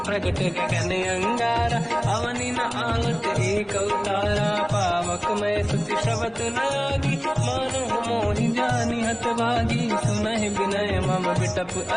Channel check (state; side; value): identical; both; correlation 1.00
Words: प्रगट गगन अंगारा, अवनि न आवत एक अवतारा, पावक मैं सुति श्रवत न आगी, मानहु मोहि जानि हत भागी, सुनहि विनय मम बिटप